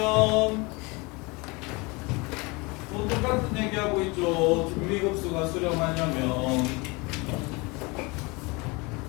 또 똑같은 얘기하고 있죠. 등비급수가 수렴하려면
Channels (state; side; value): quieter; right; 26.6 dB